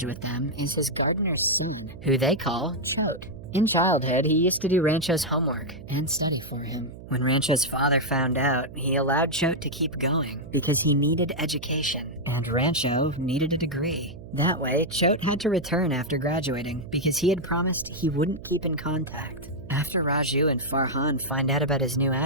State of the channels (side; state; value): right; noise; hum, 16 dB below the sound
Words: with them is his gardener's son, who they call Chote. In childhood, he used to do Rancho's homework and study for him. When Rancho's father found out, he allowed Chote to keep going because he needed education, and Rancho needed a degree. That way, Chote had to return after graduating because he had promised he wouldn't keep in contact. After Raju and Farhan find out about his new